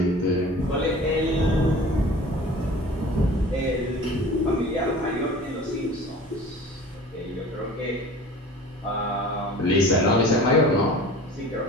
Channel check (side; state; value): both; normal; correlation 0.42